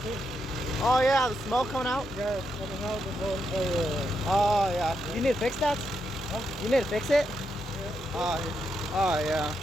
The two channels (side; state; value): both; normal; correlation 0.82